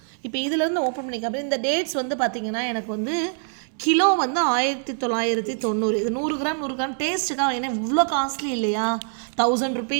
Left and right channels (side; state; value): left; silent; 60 dB below the other